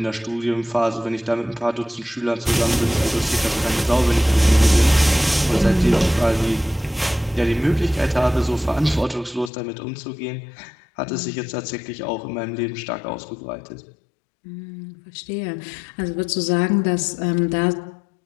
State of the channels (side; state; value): right; drops out; at 9.5 s